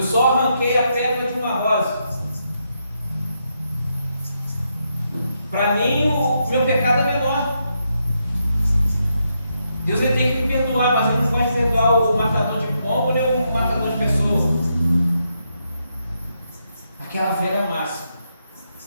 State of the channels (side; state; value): both; inverted; correlation -0.81